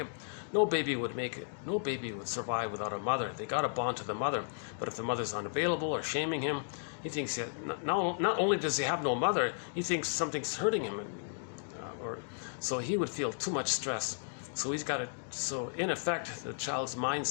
No baby would make it. No baby would survive without a mother. They got to bond to the mother. But if the mother's unavailable or shaming him, he thinks not only does he have no mother, he thinks something's hurting him, so he would feel too much stress. So he's got to. So in effect, the child's mind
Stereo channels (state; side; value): silent; right; digital silence